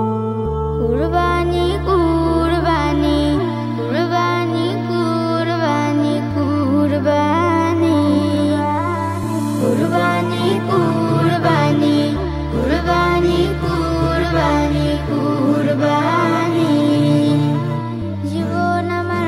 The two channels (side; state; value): both; identical; correlation 1.00